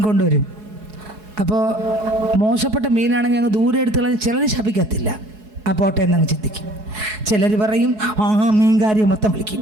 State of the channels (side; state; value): left; late; 4.7 ms